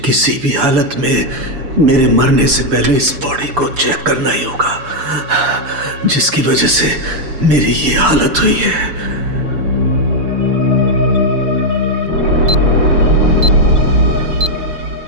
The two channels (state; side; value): late; left; 6.9 ms